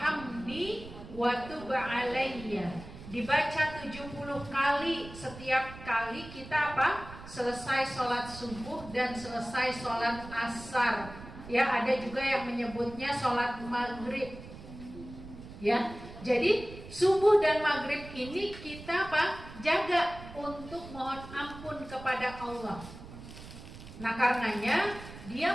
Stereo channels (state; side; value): noise; right; rumble, 15 dB below the sound